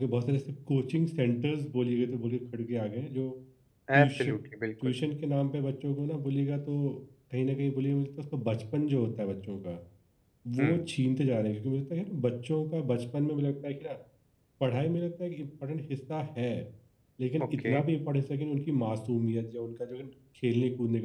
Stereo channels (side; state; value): both; identical; correlation 1.00